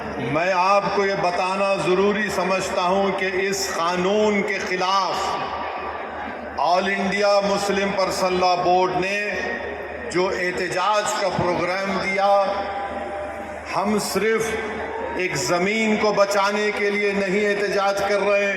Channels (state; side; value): identical; both; correlation 1.00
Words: मैं आपको ये बताना ज़रूरी समझता हूँ कि इस कानून के ख़िलाफ़ all India Muslim personal law board ने जो एहतजाज का प्रोग्राम दिया, हम सिर्फ एक ज़मीन को बचाने के लिए नहीं एहतजाज कर रहे,